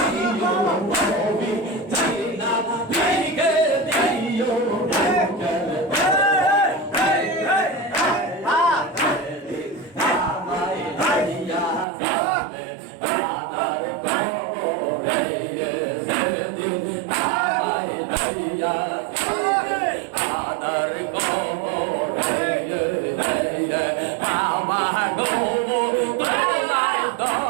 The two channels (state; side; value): drops out; left; at 11.9 s